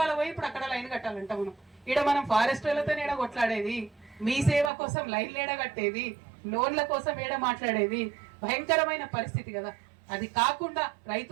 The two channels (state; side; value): drops out; left; at 4.7 s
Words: పోయి ఇప్పుడు అక్కడ లైన్ కట్టాలంట. మనం ఫారెస్ట్ వాళ్ళతో ఏడ కొట్లాడేది, మీ సేవ కోసం లైన్లు ఏడ కట్టేది, లోన్ల కోసం ఏడ మాట్లాడేది, భయంకరమైన పరిస్థితి కదా. అది కాకుండా